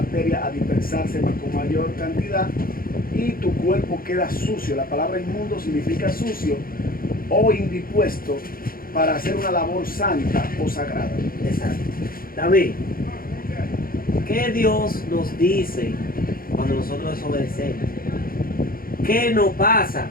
a dispersarse más con mayor cantidad y tu cuerpo queda sucio. La palabra inmundo significa sucio o indispuesto para hacer una labor santa o sagrada. Exacto. David, ¿qué Dios nos dice cuando nosotros desobedecemos? ¿Qué nos pasa?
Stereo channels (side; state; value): right; late; 0.42 ms